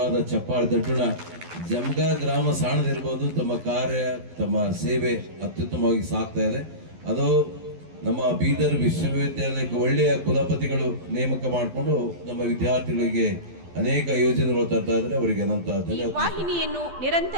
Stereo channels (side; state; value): left; late; 12 ms